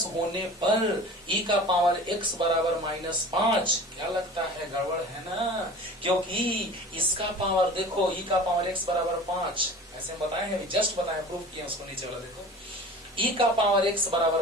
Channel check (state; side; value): normal; both; correlation 0.39